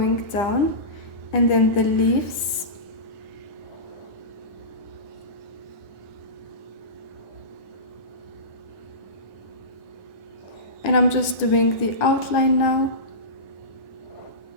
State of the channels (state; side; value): late; right; 9.6 ms